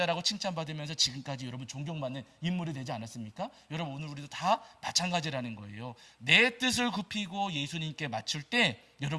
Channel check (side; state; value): both; identical; correlation 1.00